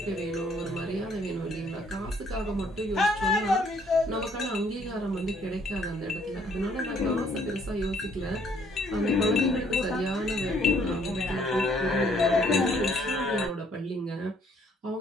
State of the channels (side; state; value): both; normal; correlation 0.64